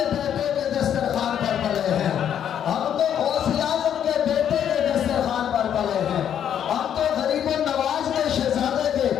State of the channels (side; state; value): right; quieter; 9.4 dB